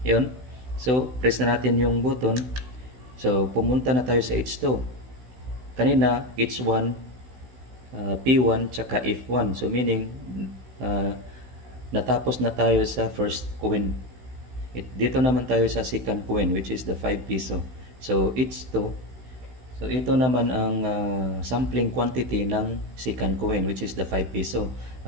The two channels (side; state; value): left; late; 16 ms